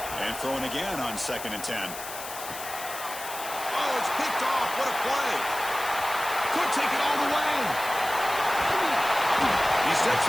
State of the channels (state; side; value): noise; left; hiss, 10 dB below the sound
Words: And throwing again on 2nd and 10. Oh, it's picked off. What a play. Could take it all the way. He steps